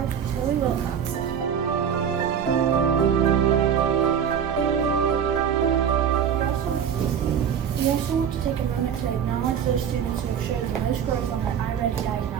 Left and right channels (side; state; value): left; quieter; 8.1 dB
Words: Chloe Wilcoxon. We also want to take a moment to acknowledge those students who have showed the most growth on their iReady